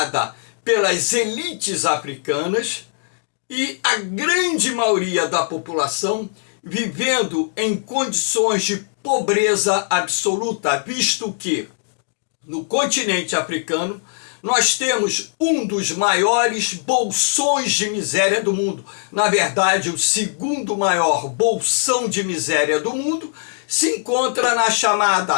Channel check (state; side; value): silent; right; digital silence